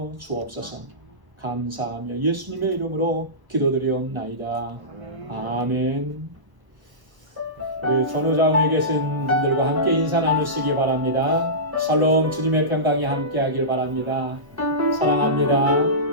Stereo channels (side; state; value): left; late; 1.0 ms